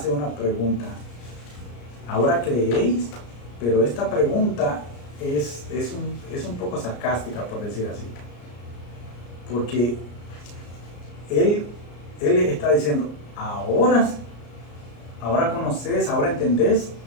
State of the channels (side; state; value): right; late; 34 ms